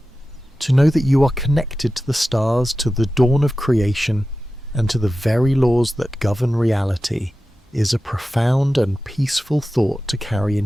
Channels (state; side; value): normal; both; correlation 0.94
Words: to know that you are connected to the stars, to the dawn of creation, and to the very laws that govern reality, is a profound and peaceful thought to carry